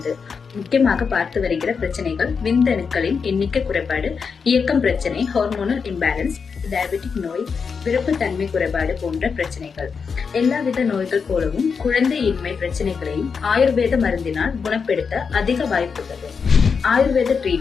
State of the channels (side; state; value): right; quieter; 5.7 dB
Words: முக்கியமாக பார்த்து வருகிற பிரச்சனைகள் விந்தணுக்களின் எண்ணிக்கை குறைபாடு, இயக்கம் பிரச்சனை, ஹார்மோனல் இம்பேலன்ஸ், டயபெட்டிக் நோய், விருப்பத்தன்மை குறைபாடு போன்ற பிரச்சனைகள். எல்லாவித நோய்கள் போலவும் குழந்தையின்மை பிரச்சனைகளையும் ஆயுர்வேத மருந்தினால் குணப்படுத்த அதிக வாய்ப்புள்ளது. ஆயுர்வேத